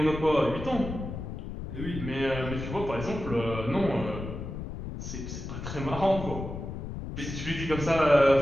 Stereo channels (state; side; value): noise; left; rumble, 7 dB below the sound